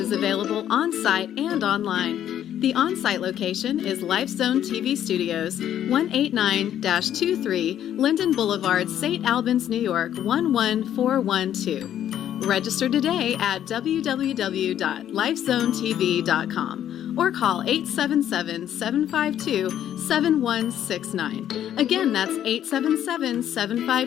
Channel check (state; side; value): quieter; right; 10.7 dB